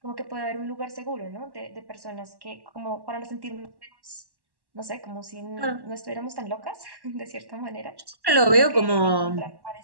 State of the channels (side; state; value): left; late; 1.1 ms